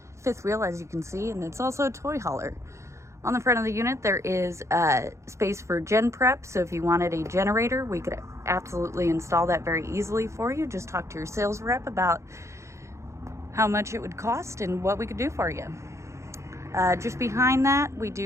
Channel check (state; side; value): late; left; 0.14 ms